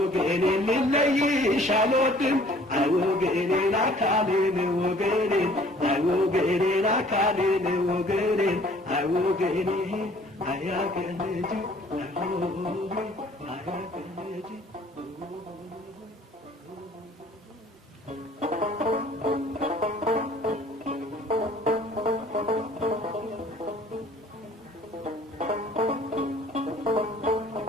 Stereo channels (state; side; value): normal; both; correlation 0.54